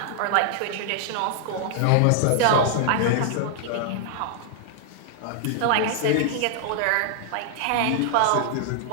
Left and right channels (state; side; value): different; both; correlation -0.01